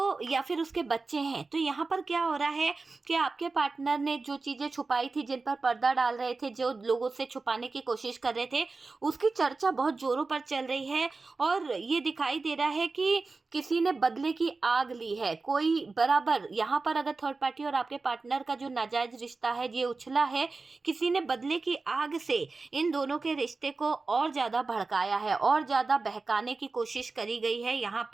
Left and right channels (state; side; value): quieter; left; 3.9 dB